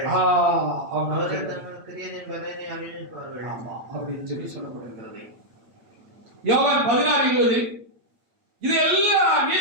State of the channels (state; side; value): late; left; 8.8 ms